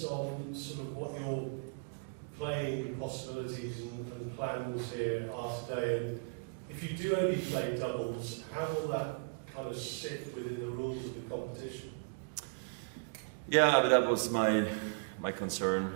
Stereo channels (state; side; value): quieter; left; 37.0 dB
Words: sort of what your playing possibilities and plans here are today? And if you do only play doubles, how will that kind of sit within the rules of the competition? Yeah, but that was my concern